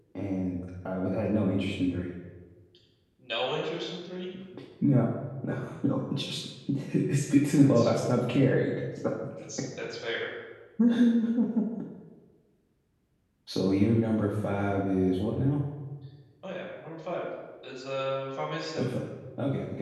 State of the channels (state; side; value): identical; both; correlation 1.00